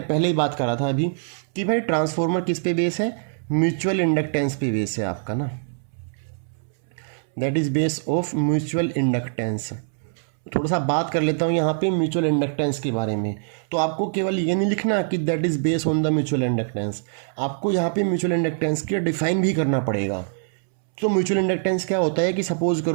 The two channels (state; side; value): silent; left; 63 dB below the other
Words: पहले ही बात करा था अभी कि भाई ट्रांसफॉर्मर किस पे बेस है, म्यूचुअल इंडक्टेंस पे बेस है आपका ना, that is base of mutual inductance. थोड़ा सा बात कर लेता हूँ यहाँ पे म्यूचुअल इंडक्टेंस के बारे में। तो आपको केवल ये नहीं लिखना कि that is base on the mutual inductance, आपको यहाँ पे म्यूचुअल इंडक्टेंस की डिफाइन भी करना पड़ेगा। तो म्यूचुअल इंडक्टेंस क्या होता है कि सपोज